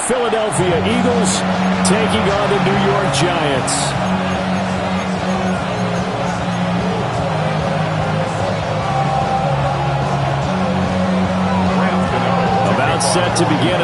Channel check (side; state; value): both; identical; correlation 1.00